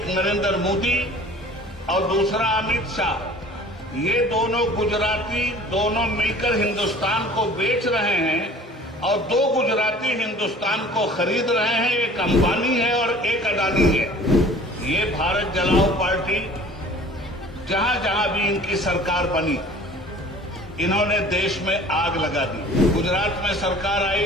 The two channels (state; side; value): normal; both; correlation 0.47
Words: नरेंद्र मोदी और दूसरा अमित शाह। ये दोनों गुजराती, दोनों मिलकर हिंदुस्तान को बेच रहे हैं और दो गुजराती हिंदुस्तान को खरीद रहे हैं। एक अंबानी है और एक अडानी है। ये भारत जलाओ पार्टी, जहां जहां भी इनकी सरकार बनी, इन्होंने देश में आग लगा दी। गुजरात में सरकार